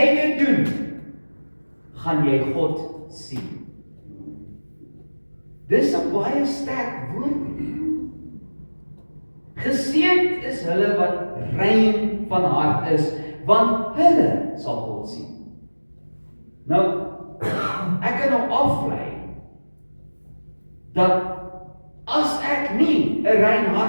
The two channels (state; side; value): inverted; both; correlation -1.00